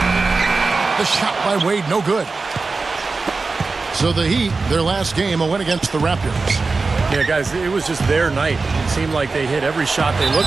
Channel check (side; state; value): left; quieter; 4.0 dB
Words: The shot by Wade, no good. So the Heat, their last game, a win against the Raptors. Yeah, guys, it was just their night. It seemed like they hit every shot they